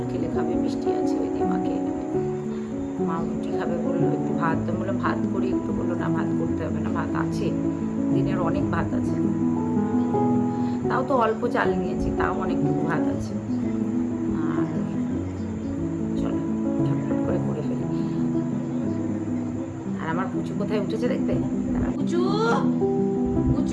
খেলে খাবে, মিষ্টি আছে ওই দিয়ে মা খেয়ে নেবে। মা রুটি খাবে বললো, একটু ভাত, তো বললাম ভাত করি একটু, বললো না ভাত করতে হবে না, ভাত আছে, দিনের অনেক ভাত আছে, তাও তো অল্প চাল নিয়েছি, তাও অনেকটুকু ভাত আছে। আর চলো ঝটপট করে করে ফেলি। আর আমার পুচু কোথায় উঠেছে দেখবে, পুচু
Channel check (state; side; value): identical; both; correlation 1.00